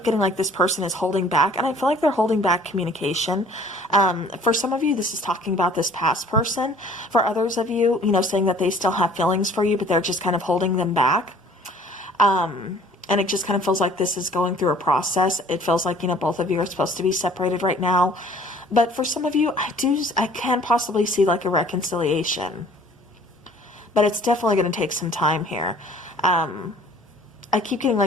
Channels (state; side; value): normal; both; correlation 0.52